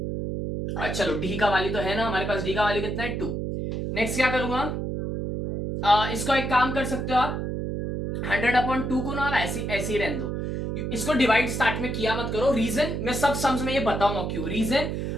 चलो d का वैल्यू तो है ना हमारे पास, d का वैल्यू कितना है 2। नेक्स्ट क्या करूंगा, इसको एक काम कर सकते हो आप, 100/2 को ना ऐसे ही रहने दो, इसको डिवाइड स्टार्ट में किया मत करो। रीजन मैं सब सम्स में ये बताऊंगा क्यों, रीजन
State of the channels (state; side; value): noise; right; hum, 3 dB below the sound